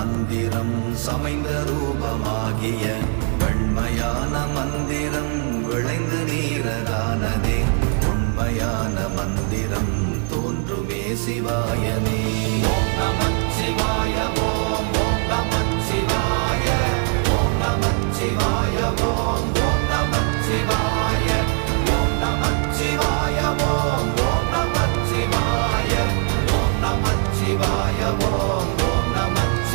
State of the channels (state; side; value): quieter; left; 38.9 dB